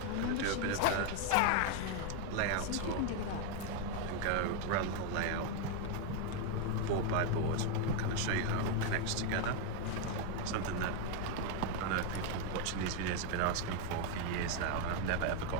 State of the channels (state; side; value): different; both; correlation 0.01